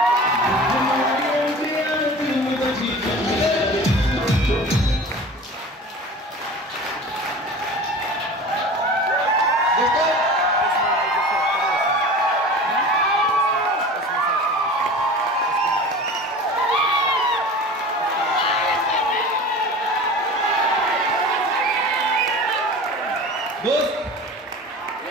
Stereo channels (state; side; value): normal; both; correlation 0.37